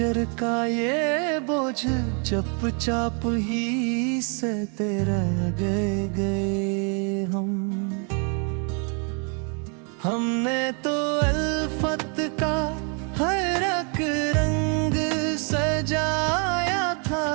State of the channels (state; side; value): quieter; left; 37.7 dB